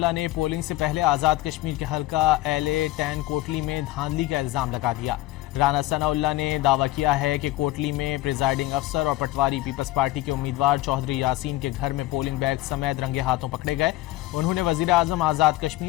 نے پولنگ سے پہلے آزاد کشمیر کے حلقہ LA-10 کوٹلی میں دھاندلی کا الزام لگا دیا. رانا ثناءاللہ نے دعویٰ کیا ہے کہ کوٹلی میں پریزائڈنگ افسر اور پٹواری پیپلز پارٹی کے امیدوار چودھری یاسین کے گھر میں پولنگ بیگ سمیت رنگے ہاتھوں پکڑے گئے. انہوں نے وزیراعظم آزاد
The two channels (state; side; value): quieter; right; 17.3 dB